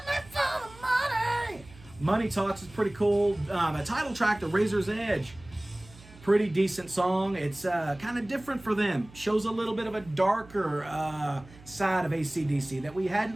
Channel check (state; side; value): noise; right; hum, 22 dB below the sound